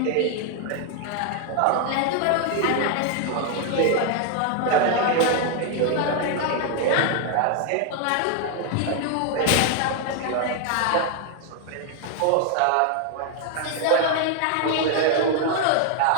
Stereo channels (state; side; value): different; both; correlation 0.00